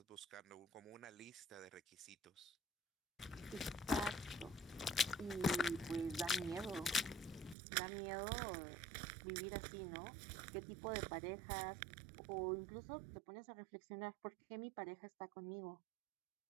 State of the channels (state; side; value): drops out; left; at 7.6 s